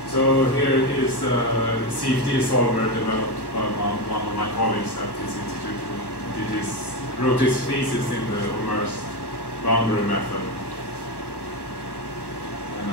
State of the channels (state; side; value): late; right; 1.1 ms